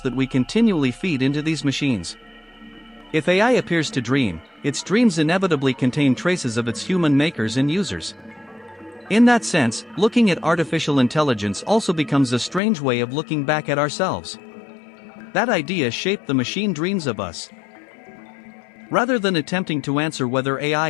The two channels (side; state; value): right; drops out; at 12.6 s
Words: we continually feed into these machines. If AI appears to dream, its dreams inevitably contain traces of its human makers and users. In that sense, looking at artificial intelligence also becomes a strange way of looking back at ourselves. That idea shaped The Machine Dreams of Us. Rather than attempting to answer whether AI